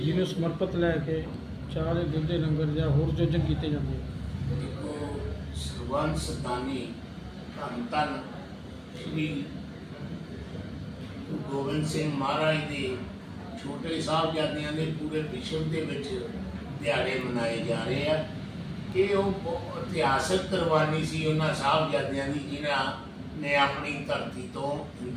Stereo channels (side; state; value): both; identical; correlation 1.00